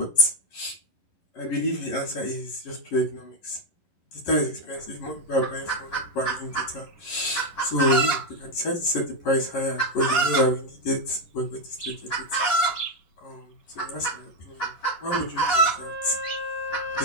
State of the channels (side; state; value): right; late; 11 ms